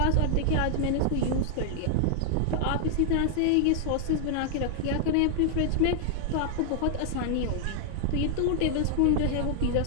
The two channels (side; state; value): both; different; correlation 0.00